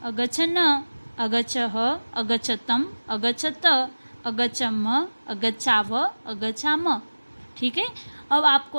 अगच्छन, अगच्छह, अगच्छतम, अगच्छत, अगच्छम, अगच्छाव, अगच्छाम, ठीक है। अब आपको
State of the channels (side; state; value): both; inverted; correlation -1.00